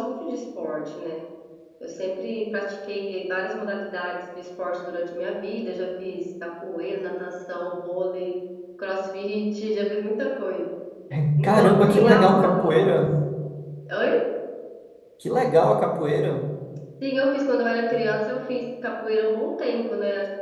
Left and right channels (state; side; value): identical; both; correlation 1.00